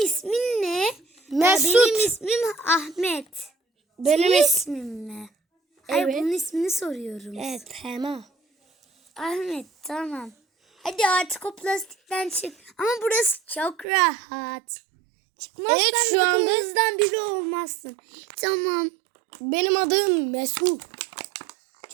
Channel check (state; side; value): drops out; left; at 13.9 s